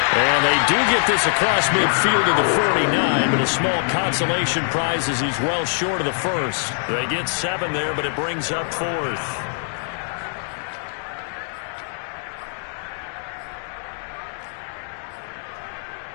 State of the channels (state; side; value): silent; right; 60 dB below the other